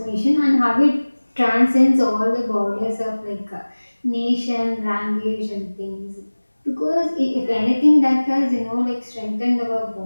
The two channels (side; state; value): both; inverted; correlation -1.00